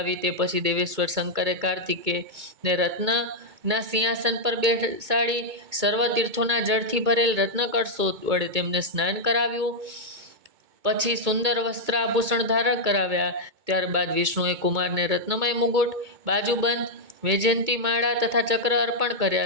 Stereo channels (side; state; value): left; late; 2.2 ms